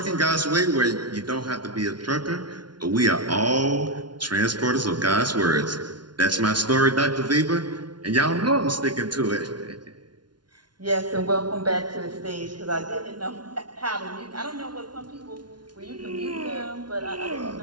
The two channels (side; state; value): left; late; 0.70 ms